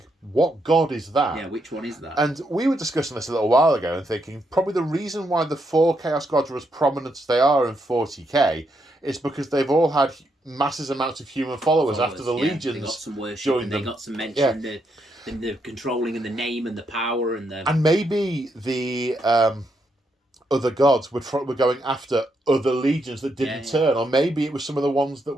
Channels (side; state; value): both; normal; correlation 0.79